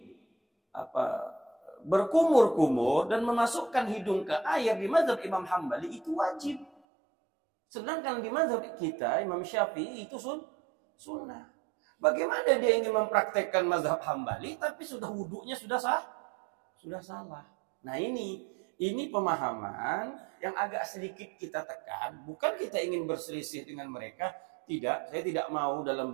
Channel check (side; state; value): left; drops out; at 6.7 s